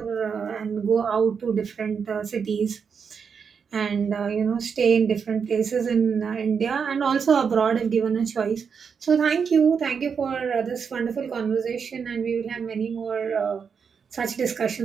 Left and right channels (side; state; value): left; quieter; 6.3 dB